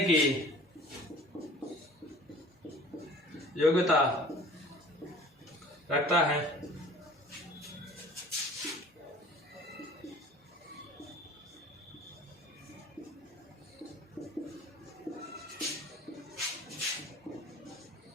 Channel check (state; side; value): normal; both; correlation 0.47